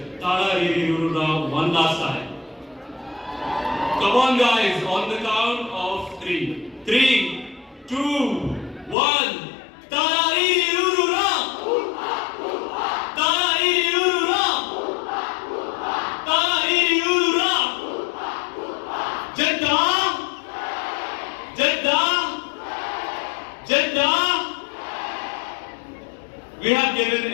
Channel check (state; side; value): drops out; right; at 9.0 s